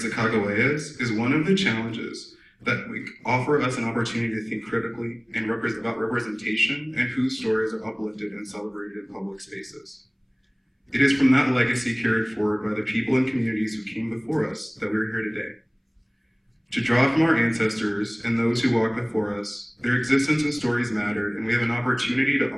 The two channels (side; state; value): both; identical; correlation 1.00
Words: is one of the challenges that offer us an opportunity to think critically and about representation and whose stories are uplifted and celebrated in public spaces. It is from that legacy carried forward by the people and communities who came before us that we're here today. To draw from our ancestors and those who walked before us, their existence and stories mattered, and we have an opportunity to